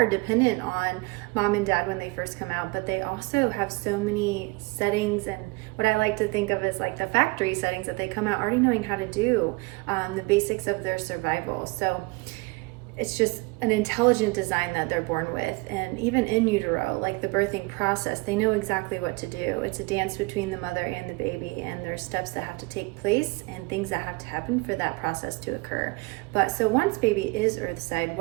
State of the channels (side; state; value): left; quieter; 25.5 dB